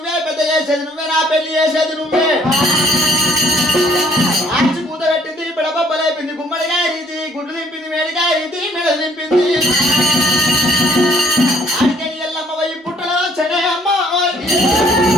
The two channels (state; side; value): normal; both; correlation 0.61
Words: పెద్ద చేసేది నువ్వే, నా పెళ్లి చేసేది నువ్వే. ఆర్చి కూత పెట్టింది, పిడబొబ్బలేపింది, గుమ్మడికాయ రీతి గుడ్లు దింపింది, మేడికాయ రీతి మెడలు దింపింది. ఆడికని ఎల్లమ్మ పోయి పుట్టలో వచ్చనే అమ్మ,